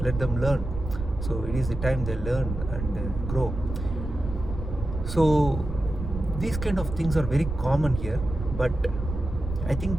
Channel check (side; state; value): right; noise; rumble, 7 dB below the sound